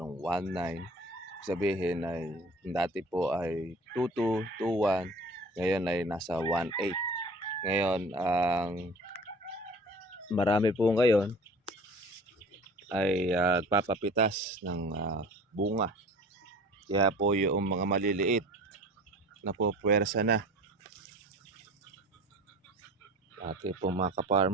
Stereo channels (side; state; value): both; normal; correlation 0.43